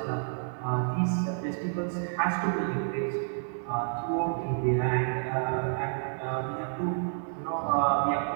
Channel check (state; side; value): silent; left; 58 dB below the other